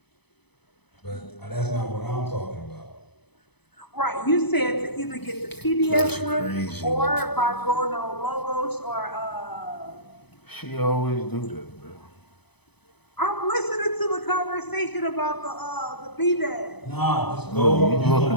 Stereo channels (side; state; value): right; late; 0.98 ms